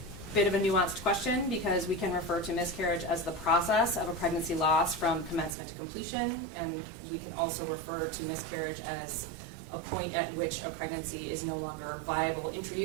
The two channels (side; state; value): left; drops out; at 5.6 s